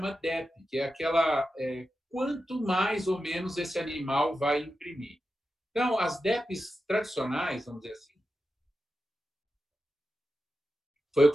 DEP, que é aquela... quanto mais ou menos esse animal vai imprimir. Então, as DEPs tradicionais, vamos dizer assim, foi o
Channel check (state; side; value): normal; both; correlation 0.91